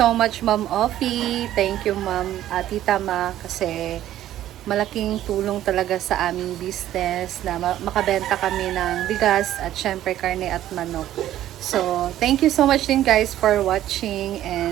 much, Ma'am Ofi. Thank you, Ma'am Tita Ma, kasi malaking tulong talaga sa aming business na makabenta kami ng bigas at syempre karne at manok. So, thank you so much din guys for watching,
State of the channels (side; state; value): left; quieter; 12.8 dB